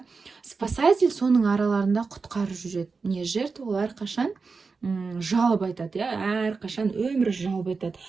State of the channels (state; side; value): quieter; left; 4.6 dB